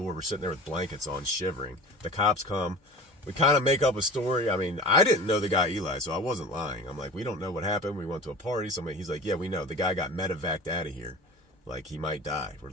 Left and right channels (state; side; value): normal; both; correlation 0.36